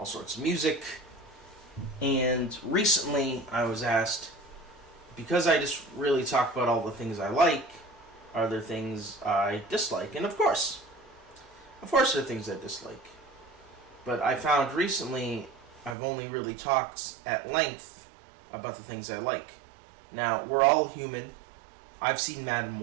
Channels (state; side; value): drops out; left; at 16.0 s